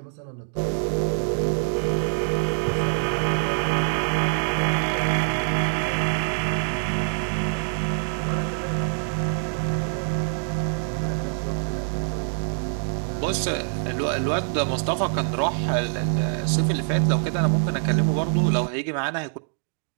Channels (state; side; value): silent; left; digital silence